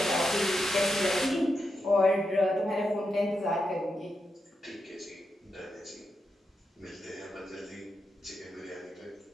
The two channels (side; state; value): both; normal; correlation 0.86